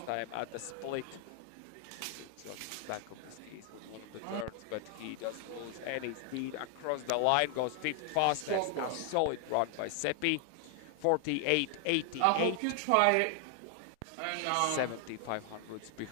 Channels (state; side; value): different; both; correlation 0.00